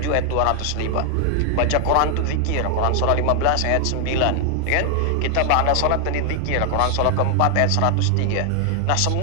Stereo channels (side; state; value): both; different; correlation 0.00